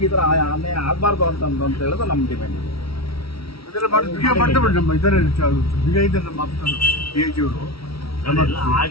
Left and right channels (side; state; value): right; late; 0.75 ms